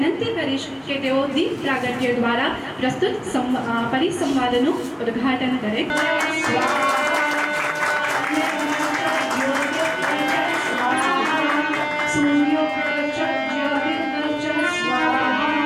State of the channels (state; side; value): identical; both; correlation 1.00